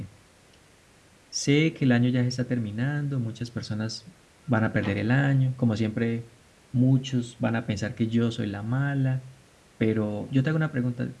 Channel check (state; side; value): identical; both; correlation 1.00